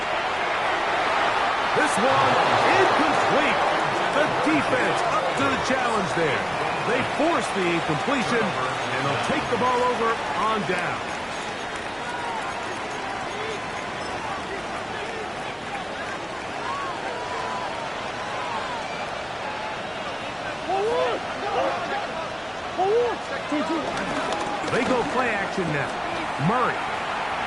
This one incomplete. The defense up to the challenge there. They force the incompletion, and they'll take the ball over on down. They go play action now. Murray.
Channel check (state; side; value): identical; both; correlation 1.00